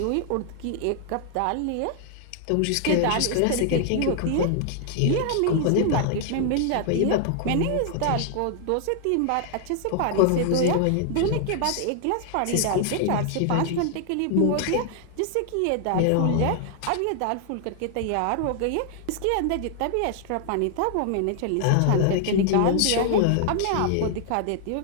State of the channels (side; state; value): both; different; correlation 0.00